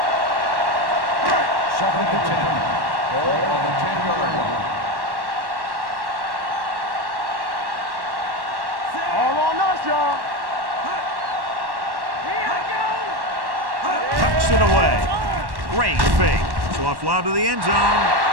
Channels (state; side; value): late; left; 1.1 ms